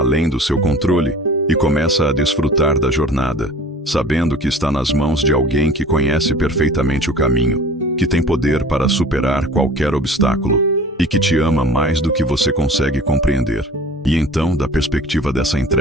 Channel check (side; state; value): both; normal; correlation 0.44